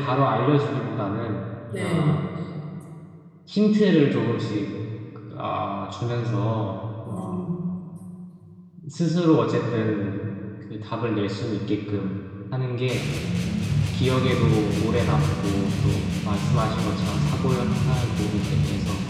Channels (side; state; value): both; identical; correlation 1.00